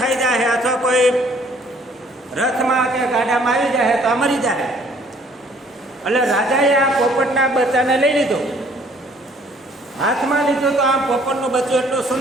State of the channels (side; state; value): both; normal; correlation 0.59